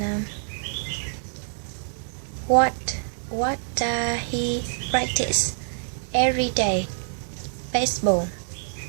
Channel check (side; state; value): left; silent; digital silence